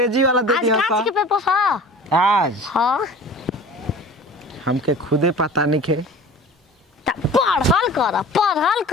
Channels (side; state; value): both; normal; correlation 0.41